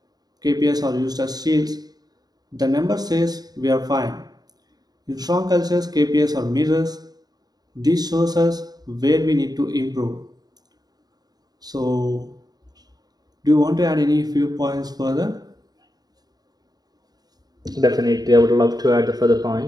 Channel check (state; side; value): late; left; 0.19 ms